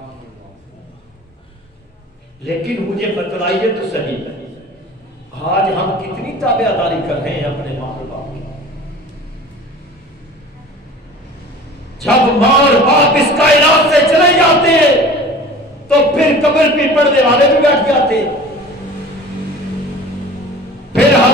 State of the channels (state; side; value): normal; both; correlation 0.42